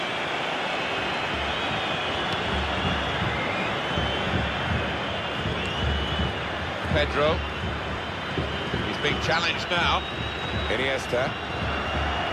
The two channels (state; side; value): identical; both; correlation 1.00